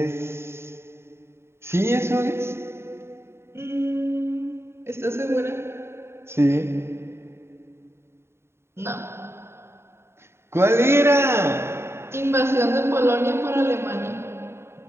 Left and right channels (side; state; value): left; late; 0.12 ms